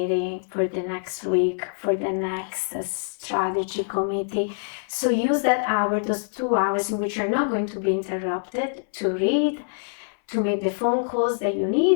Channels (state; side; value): silent; right; 62 dB below the other